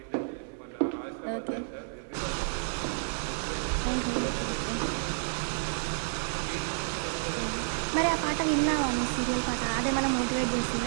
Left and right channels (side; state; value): left; silent; 58 dB below the other